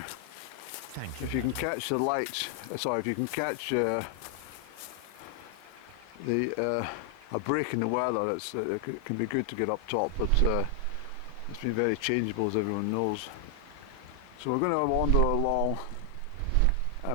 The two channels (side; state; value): both; different; correlation 0.00